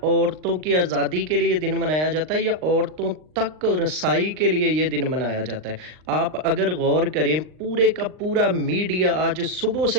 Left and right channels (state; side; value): late; left; 39 ms